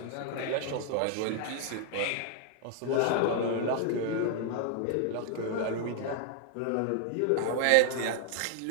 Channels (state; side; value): different; both; correlation 0.00